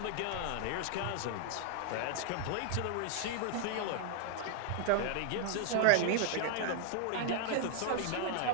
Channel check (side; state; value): both; different; correlation 0.00